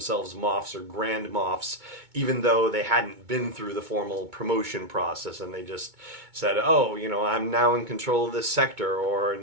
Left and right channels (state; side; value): late; left; 2.2 ms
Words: Moffs or Grand Moffs, even though they hadn't been through the formal promotion process, and they just said, oh, I'm now in control of this sector, or